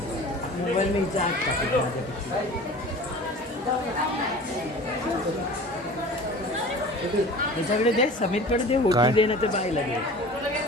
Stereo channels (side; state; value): both; normal; correlation 0.40